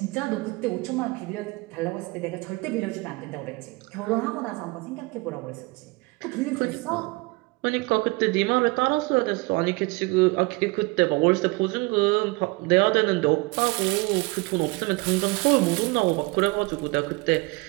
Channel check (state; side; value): quieter; left; 25.5 dB